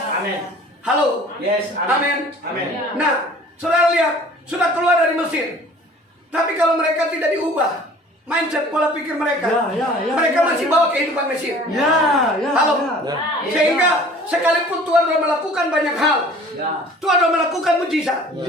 Amin. Halo. Yes. Amin. Amin. Nah, saudara lihat, sudah keluar dari Mesir. Tapi kalau mereka tidak diubah, mindset pola pikir mereka, Ya, ya, ya, mereka ya, masih ya. bawa kehidupan Mesir. Ya, ya. Halo. Ya. Sehingga Sekalipun Tuhan telah melakukan banyak hal, Ya. Tuhan telah melakukan mujizat,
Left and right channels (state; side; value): normal; both; correlation 0.48